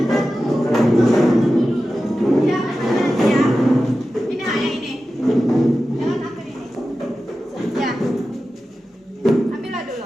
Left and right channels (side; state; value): both; normal; correlation 0.93